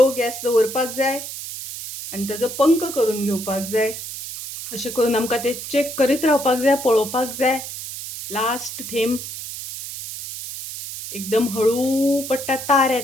गॅस दवरपाक जाय आनी ताजो पंख करून घेवपाक जाय। अशें करून आमकां ते चेक करीत रावपाक जाय, पळोवपाक जाय। लास्ट थेंब एकदम हळू पडटा तार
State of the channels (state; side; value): noise; right; hiss, 9 dB below the sound